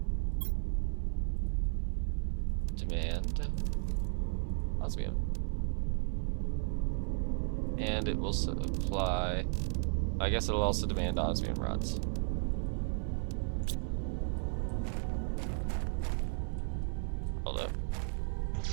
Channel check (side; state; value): left; silent; digital silence